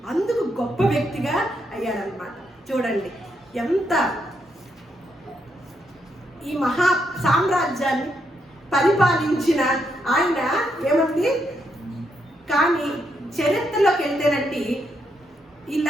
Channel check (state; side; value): normal; both; correlation 0.79